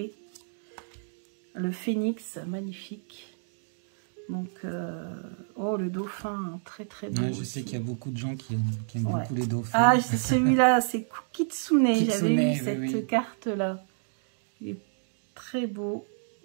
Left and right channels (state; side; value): silent; left; digital silence